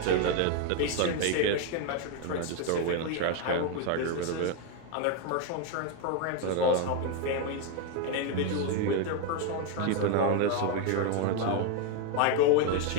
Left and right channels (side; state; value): both; different; correlation 0.02